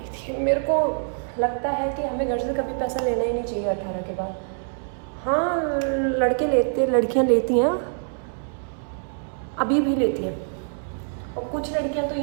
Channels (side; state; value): left; silent; 62 dB below the other